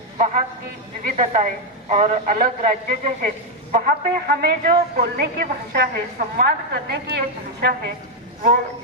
वहाँ की विविधताएं और अलग राज्य जो है वहाँ पे हमें जो बोलने की भाषा है, संवाद करने की एक भाषा है, वो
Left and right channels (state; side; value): normal; both; correlation 0.02